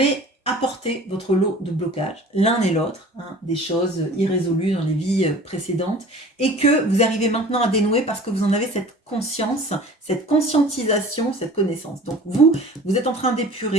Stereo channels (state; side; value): normal; both; correlation 0.44